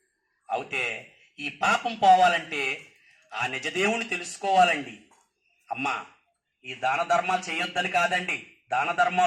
అయితే ఈ పాపం పోవాలంటే ఆ నిజదేవుని తెలుసుకోవాలండి. అమ్మా, ఈ దాన ధర్మాలు చేయొద్దని కాదండి, దాన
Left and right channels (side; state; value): both; identical; correlation 1.00